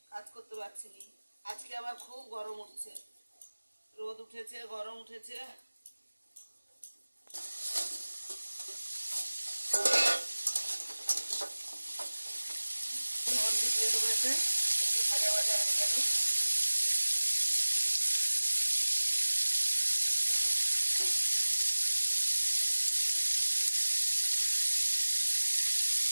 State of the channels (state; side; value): inverted; both; correlation -1.00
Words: কাজ করতে পারছি না। আজকে আবার খুব গরম উঠছে, রোদ উঠেছে, গরম উঠেছে। হলদি দিয়ে দেবো, এতে একটু ভাজা ভাজা হয়ে যাবে।